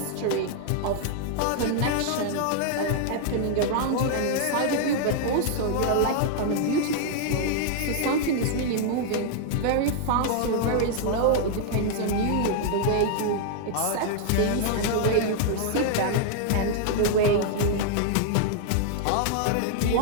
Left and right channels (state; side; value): different; both; correlation -0.01